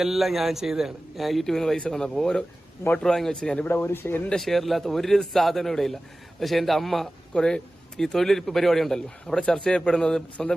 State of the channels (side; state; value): both; normal; correlation 0.97